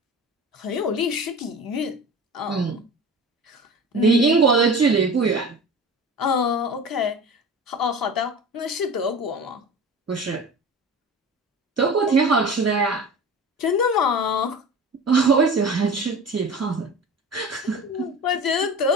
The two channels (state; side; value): normal; both; correlation 0.35